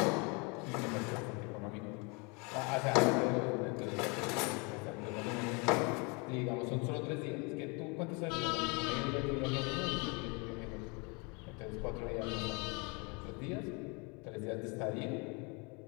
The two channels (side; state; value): right; quieter; 31.1 dB